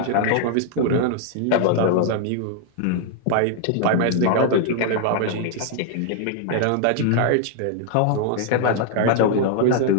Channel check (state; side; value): different; both; correlation 0.00